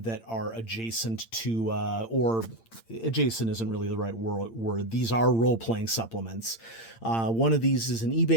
that are adjacent to, or adjacent isn't really the right word. These are role-playing supplements. One of these is an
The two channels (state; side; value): late; right; 8.8 ms